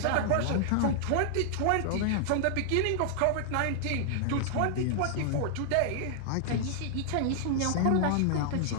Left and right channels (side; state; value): both; different; correlation 0.00